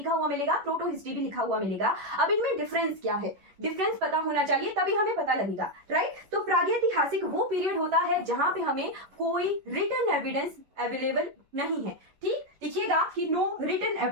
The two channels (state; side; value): late; left; 11 ms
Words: हुआ मिलेगा, प्रोटो हिस्ट्री भी लिखा हुआ मिलेगा। अब इनमें डिफरेंस क्या है, डिफरेंस पता होना चाहिए, तभी हमें पता लगेगा। राइट, तो प्रागैतिहासिक वो पीरियड होता है जहां पे हमें कोई रिटन एविडेंस अवेलेबल नहीं है। ठीक, लिखिएगा कि नो रिटन